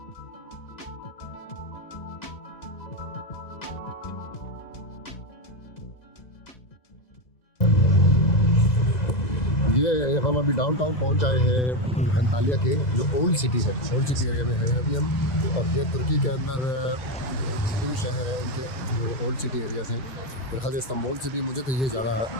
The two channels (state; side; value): late; right; 2.0 ms